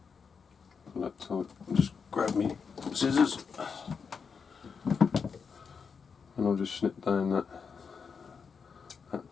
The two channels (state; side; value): quieter; right; 5.9 dB